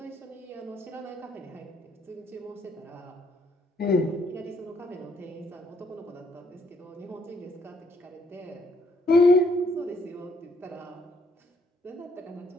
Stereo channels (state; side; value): normal; both; correlation 0.69